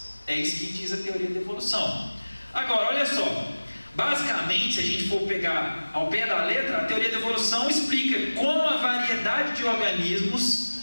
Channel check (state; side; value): inverted; both; correlation -1.00